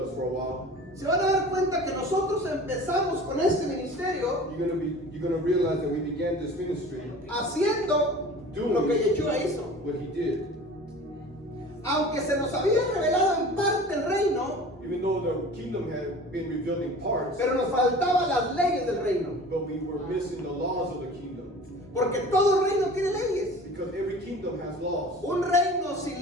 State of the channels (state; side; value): normal; both; correlation 0.41